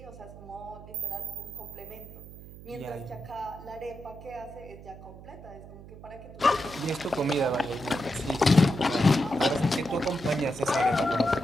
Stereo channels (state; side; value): noise; right; hum, 16 dB below the sound